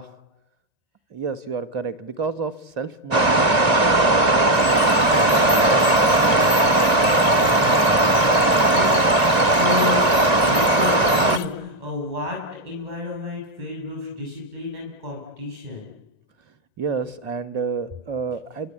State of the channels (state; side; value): late; left; 2.4 ms